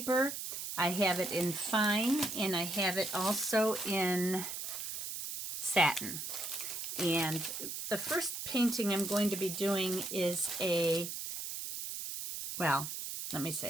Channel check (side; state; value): right; noise; hiss, 5 dB below the sound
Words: I have it in fine, and I have it also in satin. And the first painting I'm going to be doing is a